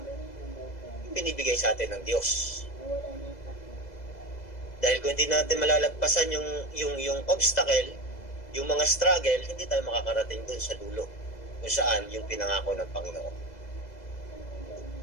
yung binibigay sa atin ng Diyos. Dahil kung hindi natin malalagpasan yung obstacle, yung mga struggle, hindi tayo makakarating dun sa dulo kung saan yung pinangako ng Panginoon.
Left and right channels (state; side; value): late; right; 2.0 ms